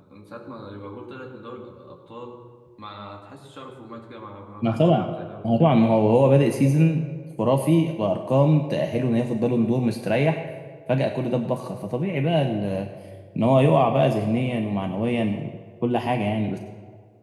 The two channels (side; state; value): both; identical; correlation 1.00